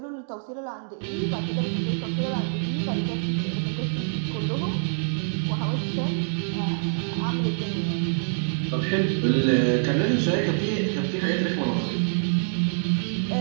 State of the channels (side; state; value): left; silent; digital silence